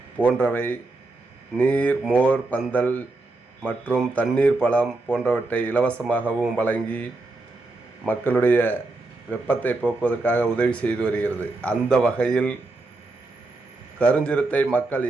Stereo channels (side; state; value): left; quieter; 3.1 dB